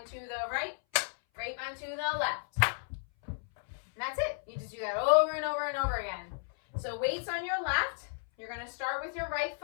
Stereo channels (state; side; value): silent; right; 56 dB below the other